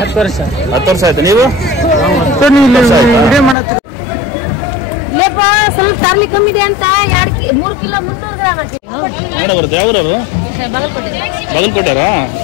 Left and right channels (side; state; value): right; drops out; at 3.6 s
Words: ವರ್ಷ. 10 ವರ್ಷ ಆಯ್ತು. ನೀವು? ಇಲ್ಲೇಪ್ಪ ಸ್ವಲ್ಪ ತರ್ಲಿ ಕಮ್ಮಿ ಇದೆ ಅಂತ 3 ಕಿಲೋ 300 ಗ್ರಾಮ್ ಹಾಕಿ ಮಾಡ ಬರುತ್ತೆ. ಯಾವ್ರವು? ಬಾಗಲಕೋಟೆ. ಬಾಗಲಕೋಟೆರಾ?